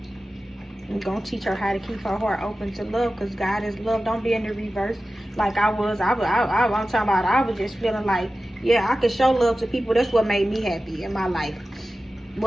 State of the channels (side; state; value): both; normal; correlation 0.94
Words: I'm going to teach her how to keep her heart open to love, because God is love. Don't be in the reverse like I was. I'm talking about, I was just feeling like, yeah, I could show love to people. That's what made me happy in my life.